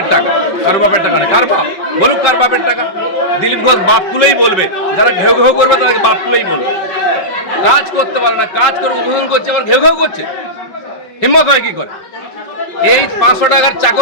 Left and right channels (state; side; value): late; right; 5.4 ms